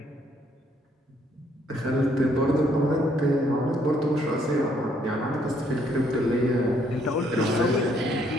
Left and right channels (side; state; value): both; normal; correlation 0.69